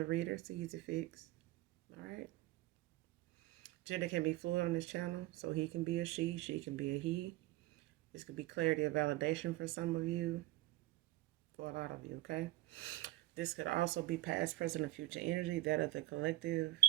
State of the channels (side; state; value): left; quieter; 17.3 dB